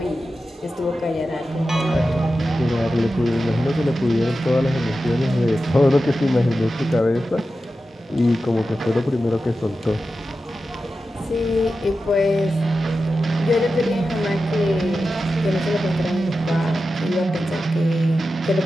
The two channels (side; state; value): both; normal; correlation 0.92